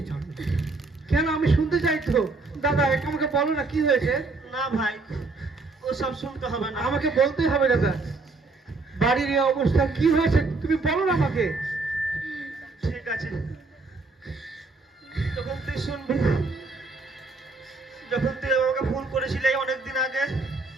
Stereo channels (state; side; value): quieter; left; 3.6 dB